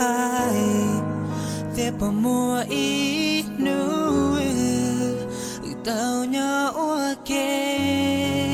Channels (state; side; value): identical; both; correlation 1.00